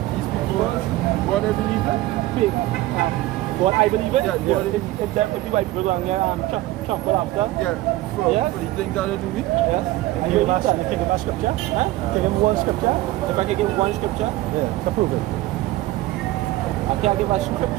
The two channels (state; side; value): quieter; left; 17.1 dB